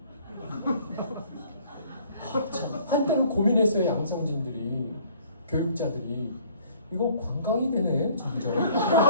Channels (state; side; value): inverted; both; correlation -0.56